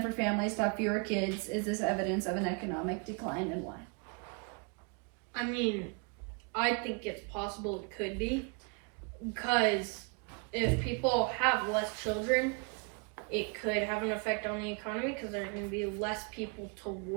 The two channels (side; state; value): left; quieter; 35.8 dB